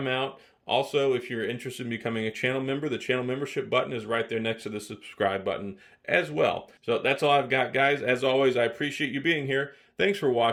out. Also, if you're interested in becoming a channel member, the channel membership button is right there next to the subscribe button as well. So that's all I've got, guys. As always, I appreciate you being here. Thanks for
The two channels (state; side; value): identical; both; correlation 1.00